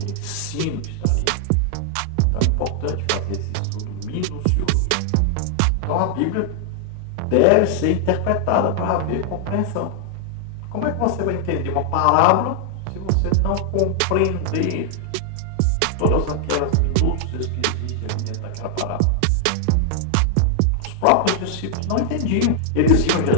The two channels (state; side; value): different; both; correlation -0.01